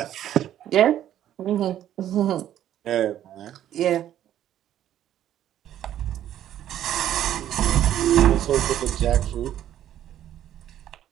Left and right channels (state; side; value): quieter; left; 11.5 dB